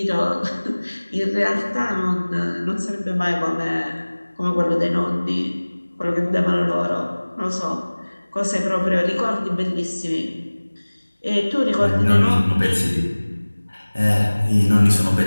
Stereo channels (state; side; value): inverted; both; correlation -1.00